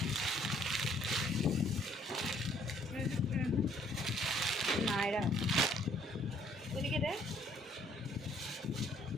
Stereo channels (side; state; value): both; normal; correlation 0.63